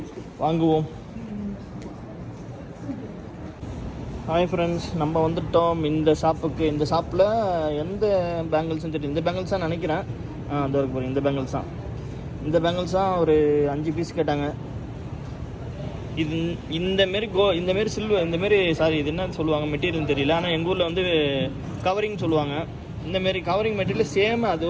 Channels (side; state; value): both; identical; correlation 1.00